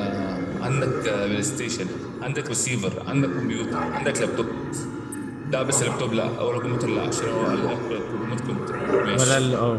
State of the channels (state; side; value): identical; both; correlation 1.00